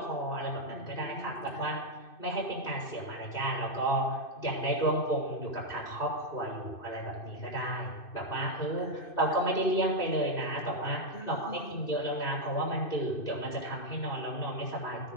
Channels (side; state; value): right; late; 2.6 ms